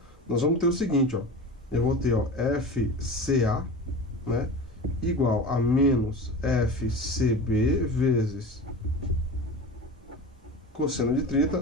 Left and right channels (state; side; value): normal; both; correlation 0.31